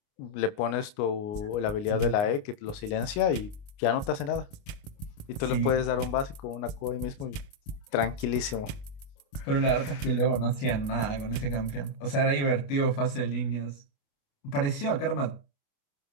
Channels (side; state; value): right; late; 29 ms